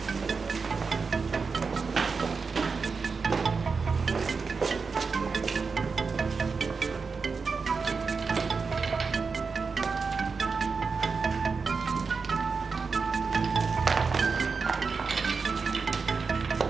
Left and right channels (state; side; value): quieter; left; 4.9 dB